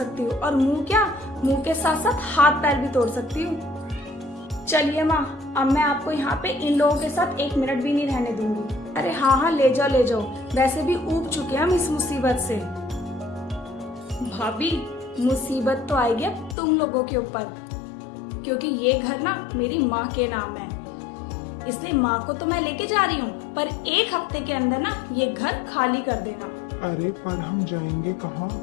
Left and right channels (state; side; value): drops out; right; at 16.6 s